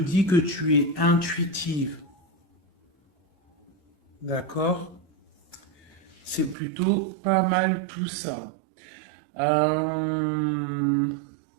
que tu es intuitive. D'accord? C'est plutôt pas mal tout ça.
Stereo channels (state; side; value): drops out; left; at 6.6 s